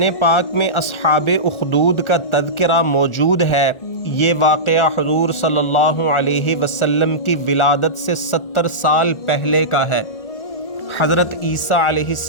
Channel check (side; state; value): right; late; 1.4 ms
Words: پاک میں اصحاب اخدود کا تذکرہ موجود ہے۔ یہ واقعہ حضور صلی اللہ علیہ وسلم کی ولادت سے 70 سال پہلے کا ہے۔ حضرت عیسیٰ علیہ